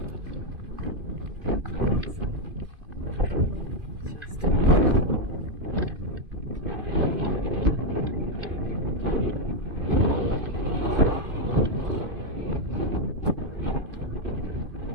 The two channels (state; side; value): late; left; 2.5 ms